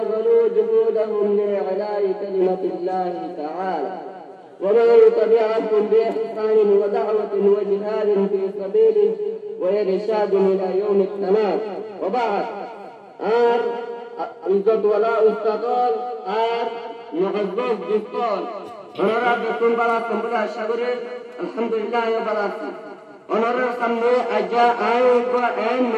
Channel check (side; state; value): both; identical; correlation 1.00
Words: جهودهم لإعلاء كلمة الله تعالى، ومن تبعهم بإحسان ودعوة وجهاد في سبيله وإرشاد إلى يوم التمام. وبعد، عزت ولا استقال معزز جسال ونرى بكم بلا سنبلا شغره الحمد لله وبلاكم ونرى سنبه أجا آيوكو أين